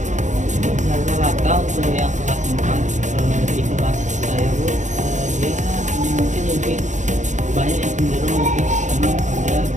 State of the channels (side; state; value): left; late; 0.35 ms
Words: Rata-rata untuk yang kelas 4 di kelas saya Bu, dia mungkin lebih banyak yang cenderung lebih senang pada